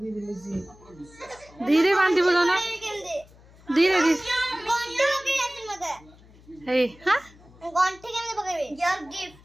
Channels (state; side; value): noise; left; hum, 25 dB below the sound